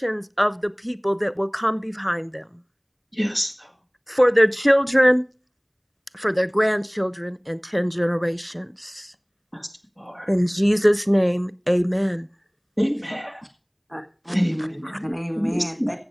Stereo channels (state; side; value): identical; both; correlation 1.00